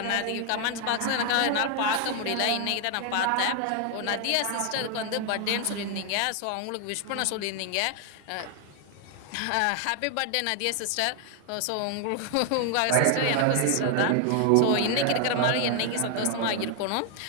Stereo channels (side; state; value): both; different; correlation 0.00